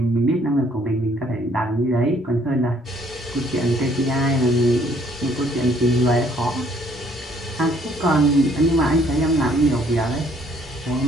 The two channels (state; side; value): normal; both; correlation 0.64